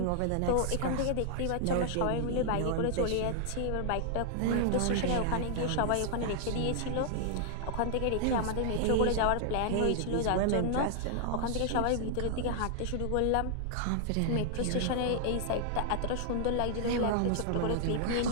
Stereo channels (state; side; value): different; both; correlation 0.00